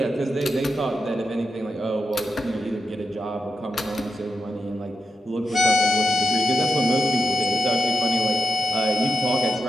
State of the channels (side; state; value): both; normal; correlation 0.88